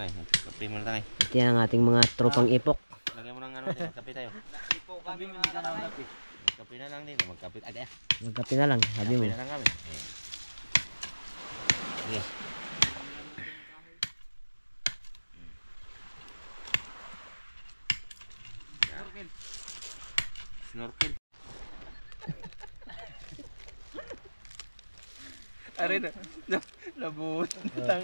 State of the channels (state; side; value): inverted; both; correlation -1.00